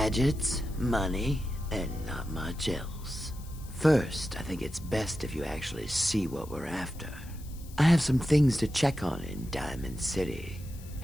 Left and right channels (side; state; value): left; noise; hiss, 21 dB below the sound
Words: money, and not much else. First, I think it's best if you actually see what we're after. I have some things to check on in Diamond City.